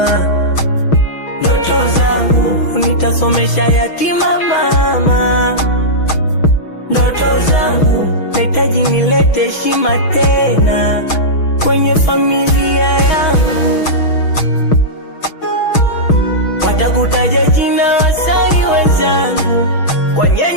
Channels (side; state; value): right; late; 6.1 ms